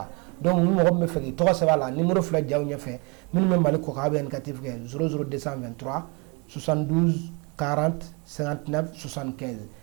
donc ni mɔgɔ min bɛ fɛ k'i tɔgɔ sɛbɛn a la numéro filɛ jaw ɲɛfɛ minnu bɛ Mali kɔ kan a bɛ indicatif kɛ 00223 72 40 59 75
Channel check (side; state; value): left; quieter; 30.2 dB